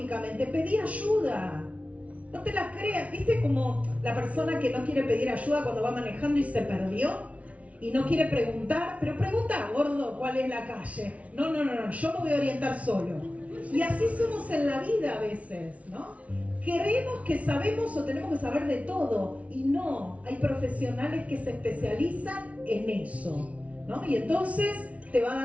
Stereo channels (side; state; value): left; late; 0.066 ms